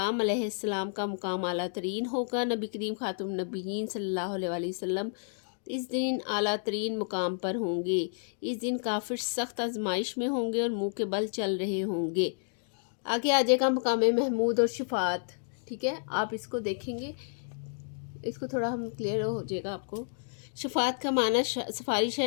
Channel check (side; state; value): right; silent; digital silence